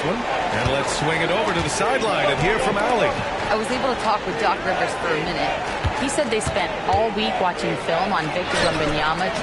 one. And let's swing it over to the sideline and hear from Allie. I was able to talk with Doc Rivers for a minute. He said they spent all week watching film on Victor Wembanyama,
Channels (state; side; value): identical; both; correlation 1.00